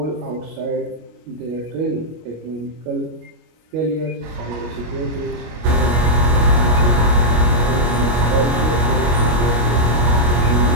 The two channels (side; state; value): left; late; 25 ms